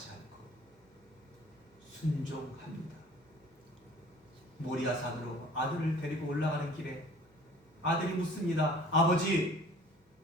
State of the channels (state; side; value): normal; both; correlation 0.49